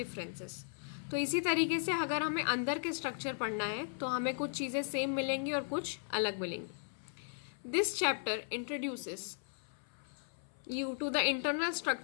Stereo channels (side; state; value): right; silent; 53 dB below the other